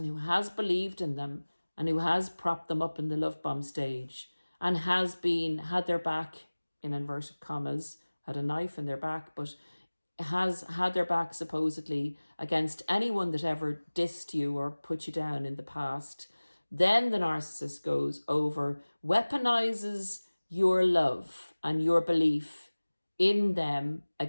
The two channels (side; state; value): both; inverted; correlation -1.00